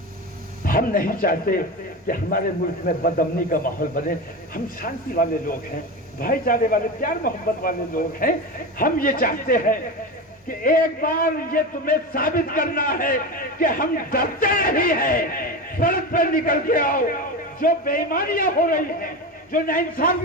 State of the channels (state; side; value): normal; both; correlation 0.23